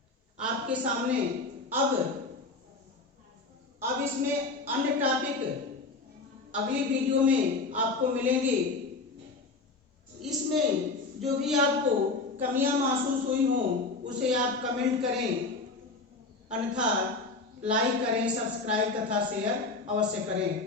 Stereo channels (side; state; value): right; quieter; 3.6 dB